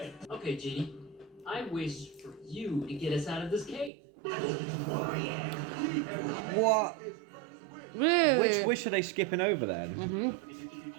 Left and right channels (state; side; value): drops out; left; at 3.9 s